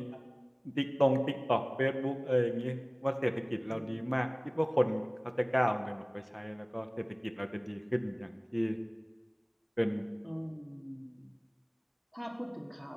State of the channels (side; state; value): both; identical; correlation 1.00